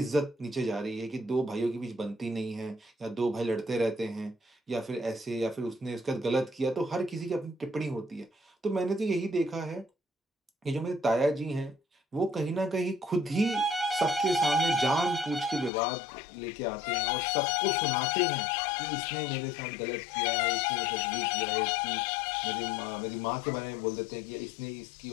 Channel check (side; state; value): right; drops out; at 15.7 s